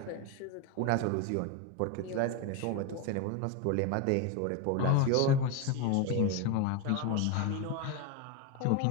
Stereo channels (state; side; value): different; both; correlation 0.02